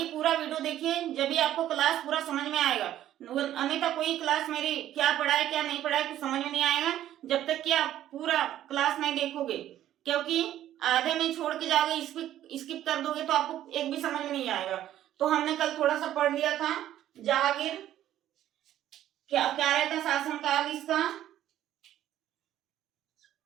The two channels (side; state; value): left; quieter; 12.3 dB